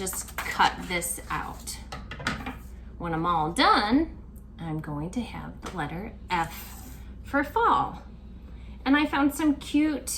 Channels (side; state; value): both; identical; correlation 1.00